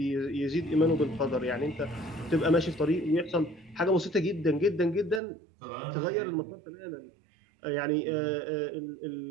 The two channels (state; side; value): drops out; left; at 5.2 s